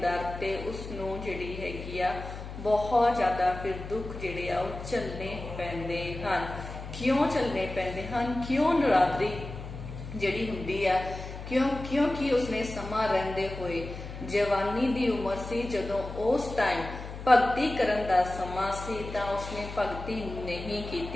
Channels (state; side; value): noise; left; hum, 10 dB below the sound